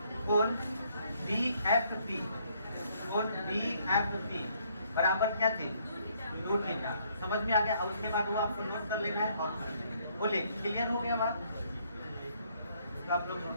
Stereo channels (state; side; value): inverted; both; correlation -0.67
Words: कोण BFP, कोण BFP बराबर क्या थे 2 थीटा। समझ में आ गया? और उसके बाद वो आपको नोट कर लेना है और बोले क्लियर हो गया बात, तो आप लोग